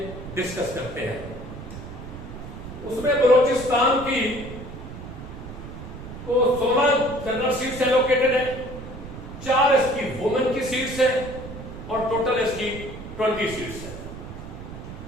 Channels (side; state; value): right; noise; rumble, 11 dB below the sound